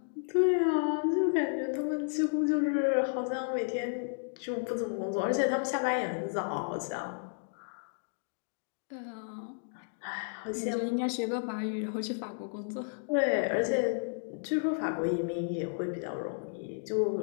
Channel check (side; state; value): right; silent; digital silence